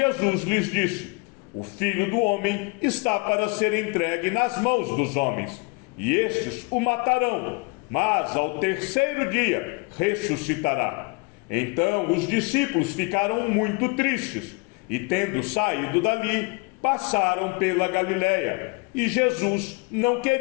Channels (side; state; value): right; quieter; 29.3 dB